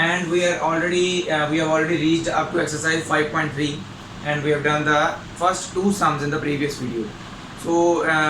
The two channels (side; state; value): both; identical; correlation 1.00